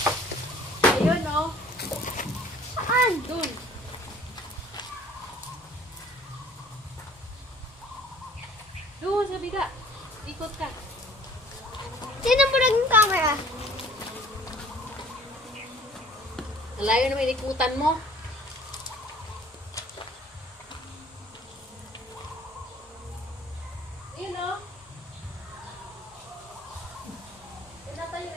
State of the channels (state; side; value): normal; both; correlation 0.52